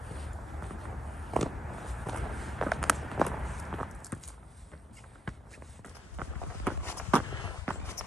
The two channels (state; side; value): normal; both; correlation 0.75